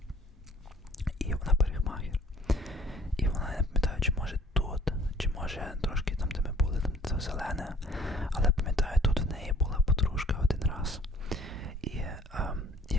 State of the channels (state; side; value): normal; both; correlation 0.56